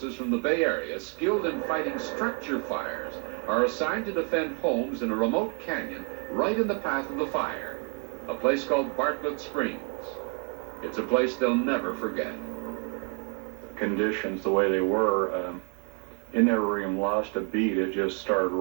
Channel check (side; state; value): left; quieter; 38.2 dB